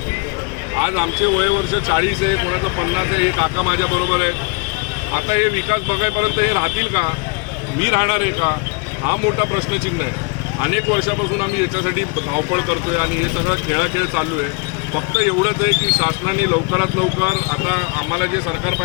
आज आमचे वयवर्ष 40 आहे, कोणाचं 50 आहे। हे काका माझ्याबरोबर आहे। आता हे विकास बघायपर्यंत हे राहतील का? मी राहणार आहे का? हा मोठा प्रश्नचिन्ह आहे। अनेक वर्षापासून आम्ही याच्यासाठी धावपळ करतोय आणि हे सगळं खेळाखेळ चालू आहे। फक्त एवढंच आहे की शासनाने लवकरात लवकर आता आम्हाला जे सरकार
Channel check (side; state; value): right; quieter; 30.6 dB